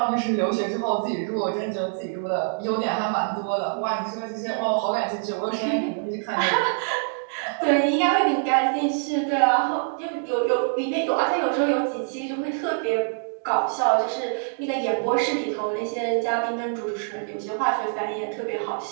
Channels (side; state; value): left; silent; digital silence